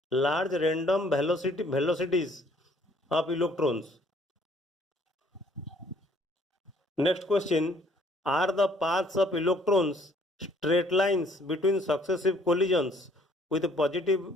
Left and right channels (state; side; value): normal; both; correlation 0.61